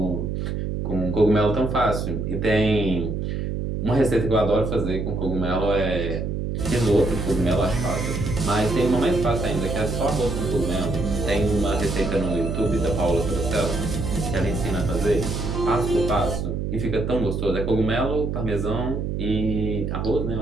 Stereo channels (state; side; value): noise; right; hum, 2 dB below the sound